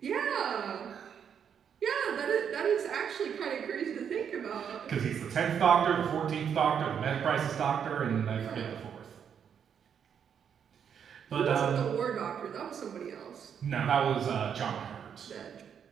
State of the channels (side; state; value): left; quieter; 7.9 dB